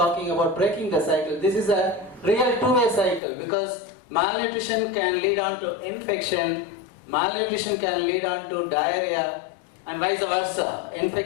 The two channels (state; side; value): drops out; right; at 3.2 s